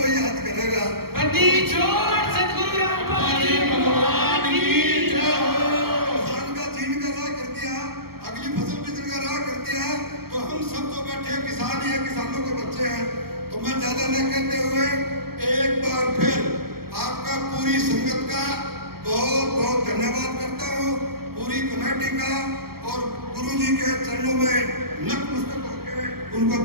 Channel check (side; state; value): left; late; 0.94 ms